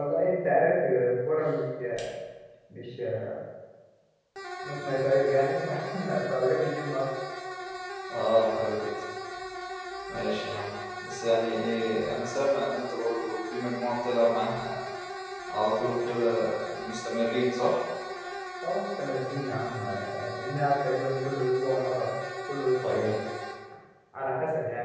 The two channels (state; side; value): identical; both; correlation 1.00